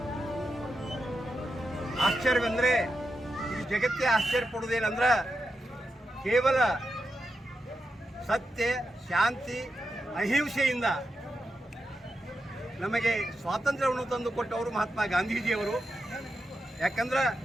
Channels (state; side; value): normal; both; correlation 0.87